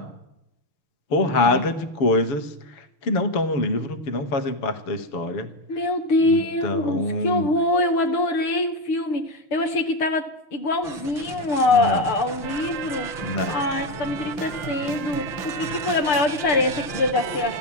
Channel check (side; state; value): right; late; 6.7 ms